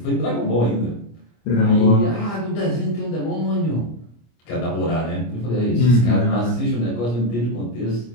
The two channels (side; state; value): right; late; 25 ms